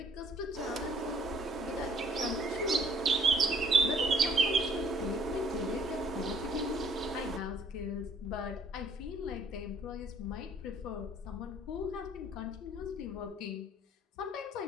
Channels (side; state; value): both; normal; correlation 0.59